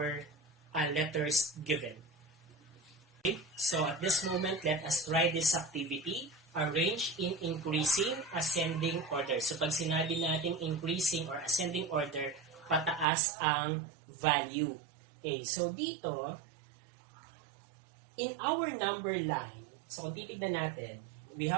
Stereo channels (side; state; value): left; drops out; at 13.1 s